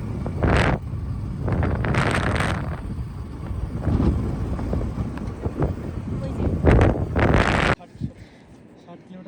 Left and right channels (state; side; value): identical; both; correlation 1.00